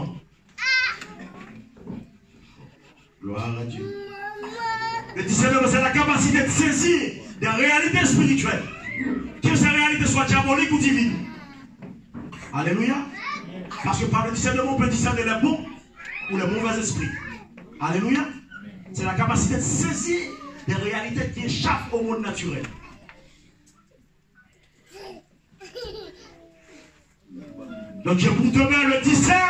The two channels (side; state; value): both; identical; correlation 1.00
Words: Gloire à Dieu. Le discernement, c'est la capacité de saisir des réalités spirituelles. Que ces réalités soient diaboliques ou divines. Alléluia. Parce que par le discernement, on peut discerner les bons ou les mauvais esprits. Alléluia. C'est la capacité de saisir des réalités qui échappent au monde naturel. Donc je vous demande le